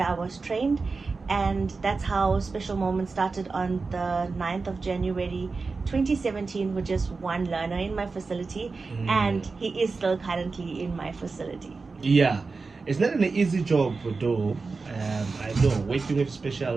I was trained. And that's how Special Moments started on the 9th of January 2017 with just 1 learner in my facility, and he is still currently in my facility. Yeah, it's not an easy job though. I know working with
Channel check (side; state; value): left; quieter; 4.2 dB